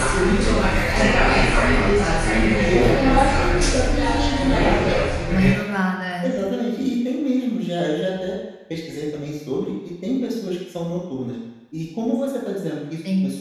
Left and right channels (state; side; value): identical; both; correlation 1.00